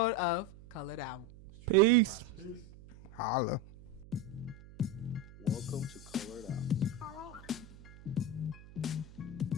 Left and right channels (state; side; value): noise; right; hum, 19 dB below the sound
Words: of Colored Out. Peace. Holla. Welcome to Colored Out.